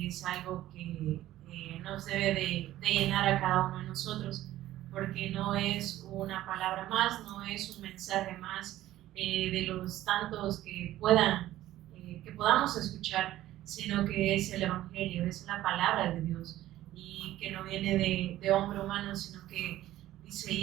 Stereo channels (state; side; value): quieter; left; 14.4 dB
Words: es algo que nos debe de llenar a cada uno de nosotros, porque no es una palabra más, no es un mensaje más de los tantos que podamos escuchar, sino que es el Evangelio, es la palabra de Dios, y que no viene de hombre humano, sino que dice,